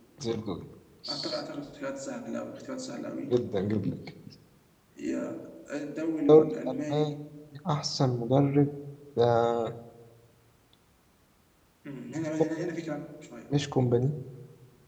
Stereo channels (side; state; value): both; identical; correlation 1.00